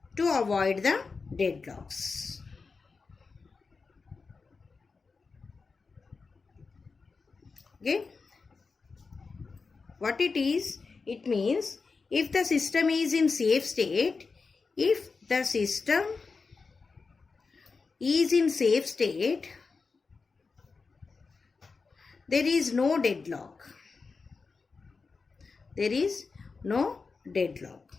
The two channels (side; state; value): right; quieter; 4.5 dB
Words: to avoid the deadlocks. Okay, what it is, it means if the system is in safe state, there is no deadlock.